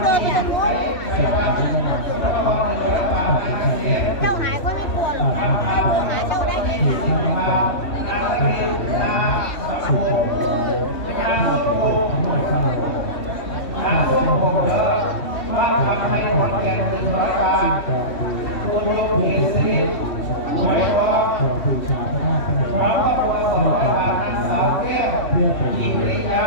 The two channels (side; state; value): right; late; 3.1 ms